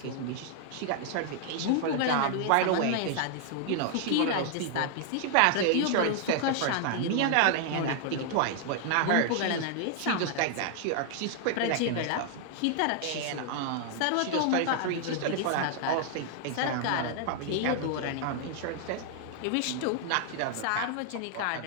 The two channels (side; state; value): both; different; correlation 0.00